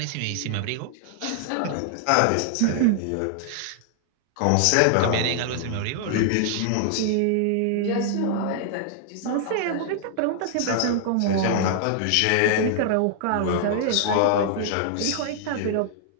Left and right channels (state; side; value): different; both; correlation -0.01